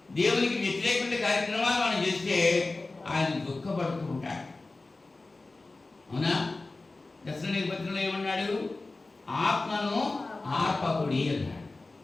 దేవునికి వ్యతిరేకమైన కార్యక్రమాలు మనం చేస్తే ఆయన దుఃఖపడుతూ ఉంటాడు. అవునా? దశలోనిక పత్రికలో ఏమన్నాడు? ఆత్మను ఆర్పకుడి అన్నాడు.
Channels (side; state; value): right; quieter; 3.3 dB